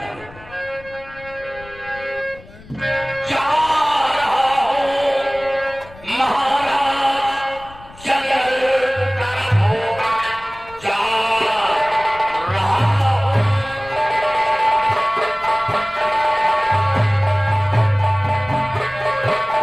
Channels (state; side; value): noise; left; rumble, 21 dB below the sound